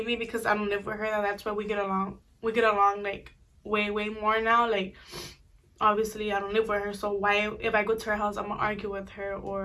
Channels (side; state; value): both; identical; correlation 1.00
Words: because I don't live with her, that's why we get along. We get along like way, way more now. Like, obviously I don't live with her, so why, if I go to her house, I'm gonna argue with her